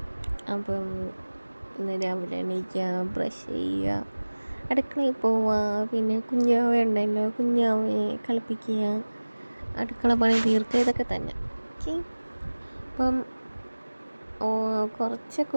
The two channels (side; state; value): both; inverted; correlation -1.00